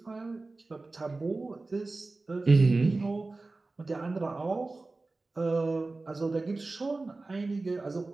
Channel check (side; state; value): left; quieter; 3.4 dB